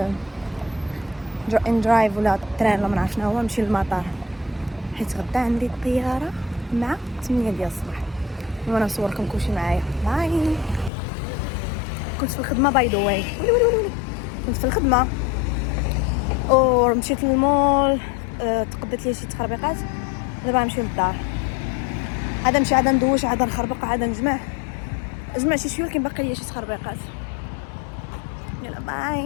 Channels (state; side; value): drops out; right; at 10.9 s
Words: ان درايف ولا تران ولا ما نعرف شنو هو، نمشي للمطار حيت غدا عندي الطياره مع 8 ديال الصباح. وانا نصوركم كلشي معايا. باي. كنت في الخدمه باي ذا واي، كنت في الخدمه ومشيت للمول، تقدت لي شي تخربيقات. دابا نمشي للدار، عاد نمشي عاد ندوش عاد نخربق عاد نجمع شي شويه، ولكن باقي لي شي تخربيقات. يلا